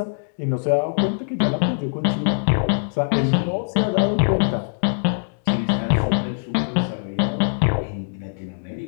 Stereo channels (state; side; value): silent; right; digital silence